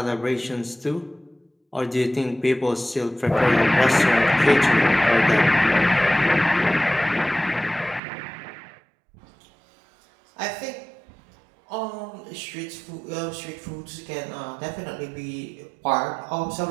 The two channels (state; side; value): drops out; left; at 8.0 s